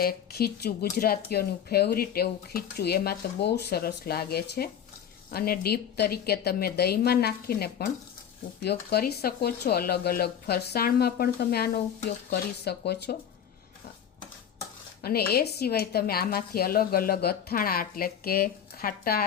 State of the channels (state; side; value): quieter; right; 8.8 dB